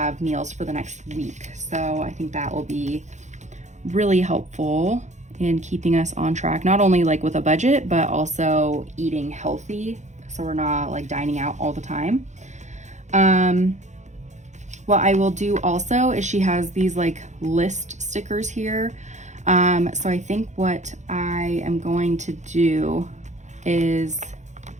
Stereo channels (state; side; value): late; left; 0.34 ms